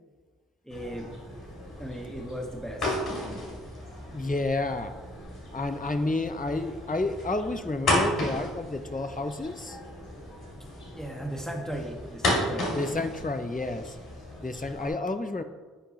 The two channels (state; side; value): normal; both; correlation 0.62